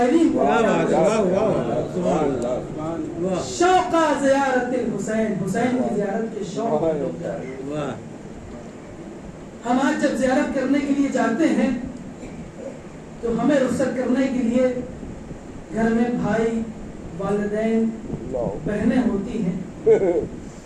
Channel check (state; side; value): identical; both; correlation 1.00